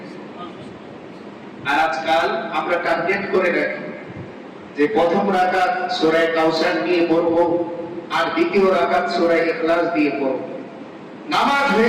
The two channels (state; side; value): identical; both; correlation 1.00